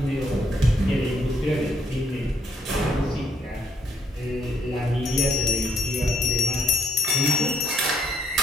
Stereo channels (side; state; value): both; normal; correlation 0.70